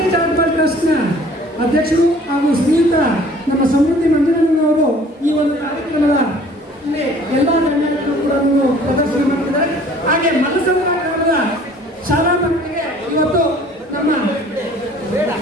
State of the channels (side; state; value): both; normal; correlation 0.52